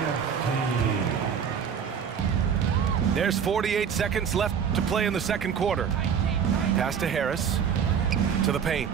team. There's 48 seconds left to play in the second quarter. Pass to Harris. To the paint.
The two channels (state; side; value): quieter; left; 7.5 dB